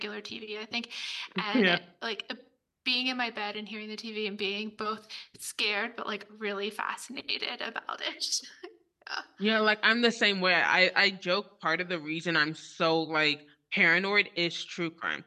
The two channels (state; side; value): identical; both; correlation 1.00